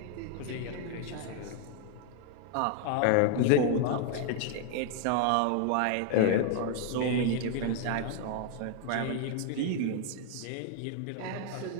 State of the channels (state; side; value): different; both; correlation 0.00